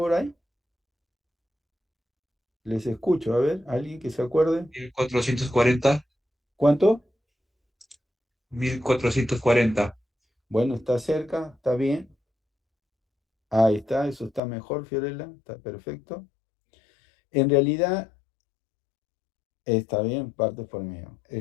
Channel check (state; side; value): drops out; right; at 14.4 s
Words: hay? Les escucho, a ver, alguien que se acuerde. 1440. ¿Cuánto? 1440. Bueno, está cerca, está bien. Ahí está, eso está mejor, Fiorella, está perfecto. En realidad, está bien, partes por millón.